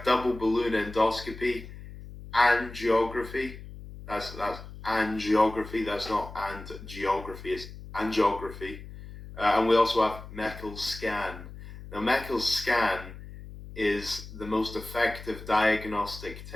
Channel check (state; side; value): noise; left; hum, 14 dB below the sound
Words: double balloon endoscopy, angiography. That's angiography. That's not geography. It's angiography. And we also have Meckel's scan. Now, Meckel's scan is the most effective diagnostic